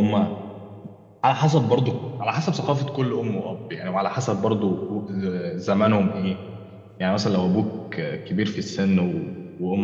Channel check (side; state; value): both; identical; correlation 1.00